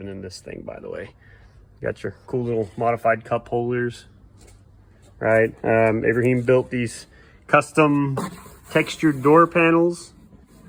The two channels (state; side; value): identical; both; correlation 1.00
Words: in this thing, by the way. Got your cool little modified cup holders, right? Abraham built these custom textured door panels